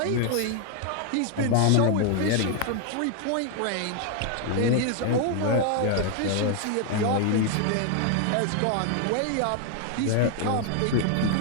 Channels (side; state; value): both; different; correlation 0.00